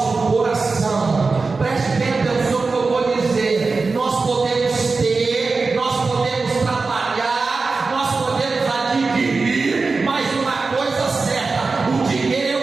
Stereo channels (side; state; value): left; quieter; 4.1 dB